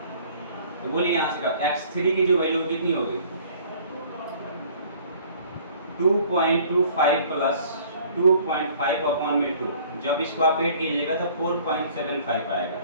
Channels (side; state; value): both; inverted; correlation -0.53